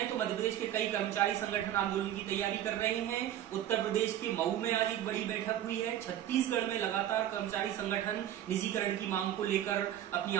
तो मध्य प्रदेश के कई कर्मचारी संगठन आंदोलन की तैयारी कर रहे हैं। उत्तर प्रदेश के मऊ में आज एक बड़ी बैठक हुई है। छत्तीसगढ़ में लगातार कर्मचारी संगठन निजीकरण की मांग को लेकर अपनी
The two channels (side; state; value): left; quieter; 11.6 dB